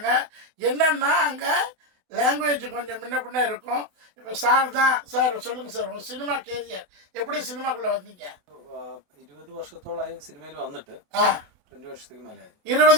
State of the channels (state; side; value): late; left; 28 ms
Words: என்னன்னா அங்கே லாங்குவேஜ் கொஞ்சம் முன்ன பின்ன இருக்கும். இப்போ சார் தான் சார் சொல்லுங்கள் சார், உங்கள் சினிமா கேரியர் எப்படி சினிமாக்குள்ளே வந்தீங்க? 20 வருஷത്തോളായി സിനിമയിൽ വന്നിട്ട് 20 വർഷത്തേക്ക് മേലെ.